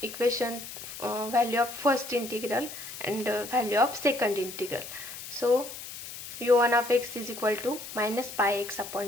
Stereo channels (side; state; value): left; noise; hiss, 11 dB below the sound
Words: equation value of first integral and value of second integral. So u1 of x is equal to minus pi x upon